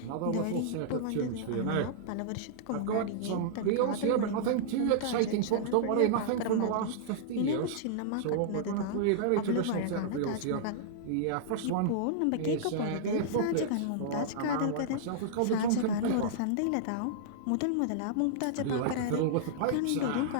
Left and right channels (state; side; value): different; both; correlation -0.02